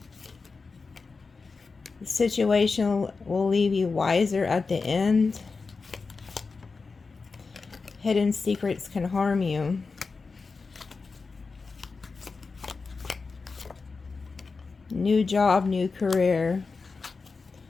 The situation will leave you wiser at the end. Hidden secrets can harm you. New job, new career.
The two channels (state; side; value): quieter; right; 4.4 dB